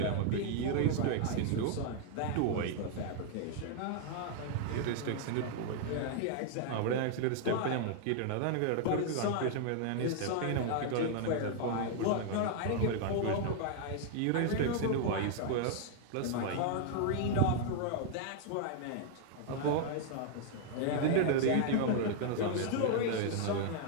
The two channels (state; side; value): different; both; correlation 0.00